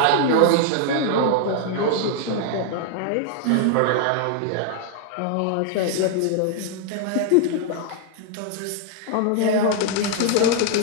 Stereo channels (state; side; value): different; both; correlation 0.00